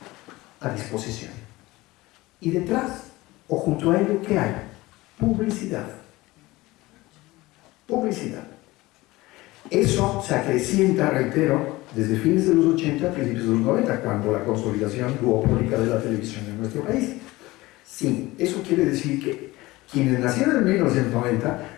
a disposición. Y detrás, o junto a ello, ¿qué hay? Publicidad. Publicidad. Eso se acrecienta, reitero, desde fines de los 80 a principios de los 90, cuando la consolidación duopólica de la televisión en nuestro país. Sí, eso quiere decir que quienes nacieron en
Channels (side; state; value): right; quieter; 19.8 dB